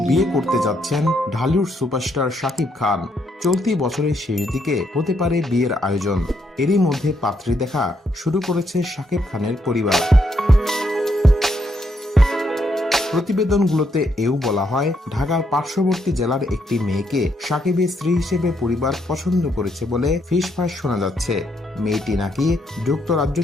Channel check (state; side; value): normal; both; correlation 0.76